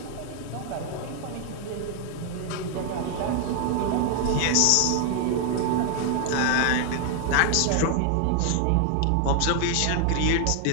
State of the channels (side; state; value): both; different; correlation 0.00